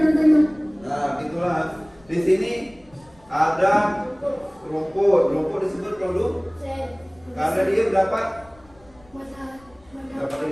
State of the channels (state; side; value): noise; left; rumble, 27 dB below the sound